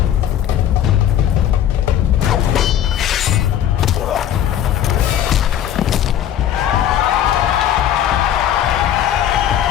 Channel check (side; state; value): right; quieter; 10.5 dB